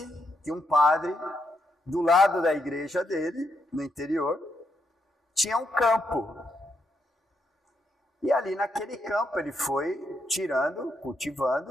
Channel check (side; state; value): both; normal; correlation 0.80